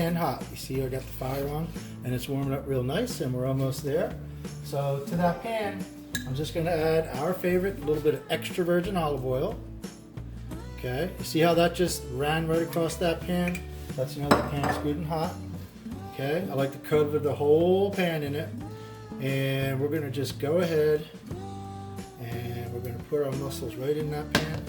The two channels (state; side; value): identical; both; correlation 1.00